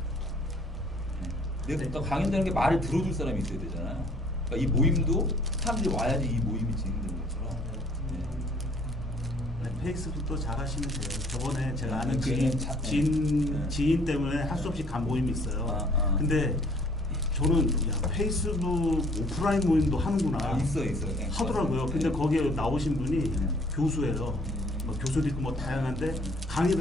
내가 강연이라는 게 말을 들어줄 사람이 있어야 되잖아요. 그러니까 이 모임도 사람들이 와야지 이 모임이 진행되는 것처럼. 페이스북도 잘 하시면 돼요. 저번에 제가 아는 지인 때문에 할 수 없이 간 모임이 있어요. 근데 저는 페이스북 오프라인 모임도 하는구나. 있어. 하더라고요. 근데 거기에 나오신 분이 교수예요. 뭐 교수도 있고 뭐 다양한데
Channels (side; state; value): both; normal; correlation 0.58